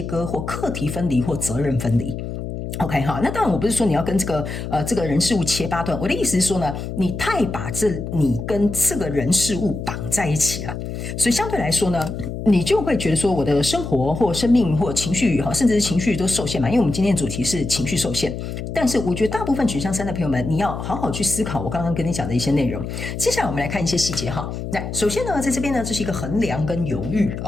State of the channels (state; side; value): noise; left; hum, 6 dB below the sound